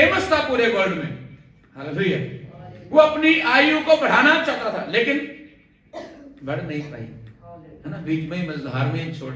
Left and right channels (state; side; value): identical; both; correlation 1.00